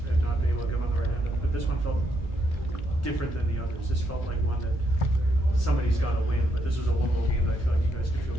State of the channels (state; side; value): normal; both; correlation 0.77